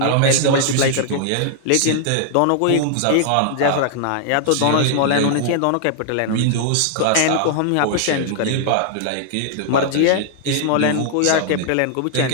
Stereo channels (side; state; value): both; different; correlation -0.01